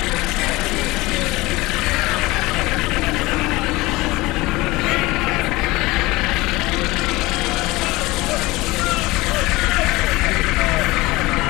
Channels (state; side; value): quieter; right; 20.9 dB